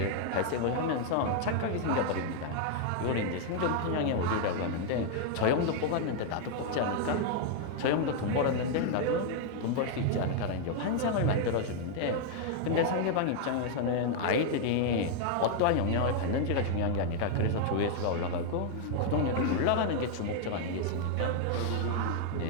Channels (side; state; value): both; different; correlation 0.00